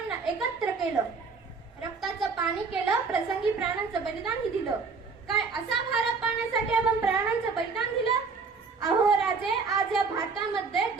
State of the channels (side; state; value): left; quieter; 4.8 dB